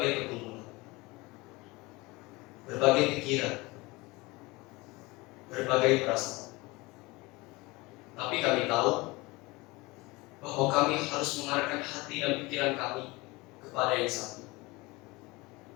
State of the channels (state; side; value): quieter; right; 23.1 dB